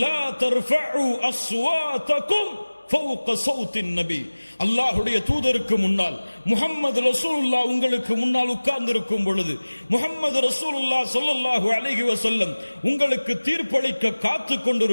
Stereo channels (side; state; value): both; inverted; correlation -1.00